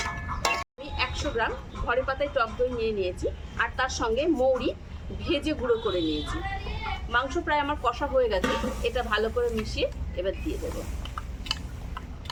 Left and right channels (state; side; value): identical; both; correlation 1.00